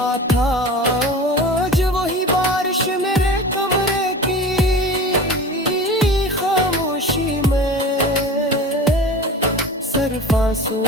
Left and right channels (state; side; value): normal; both; correlation 0.35